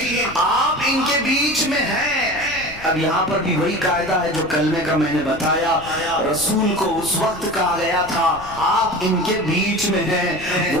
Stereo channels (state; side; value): noise; left; rumble, 17 dB below the sound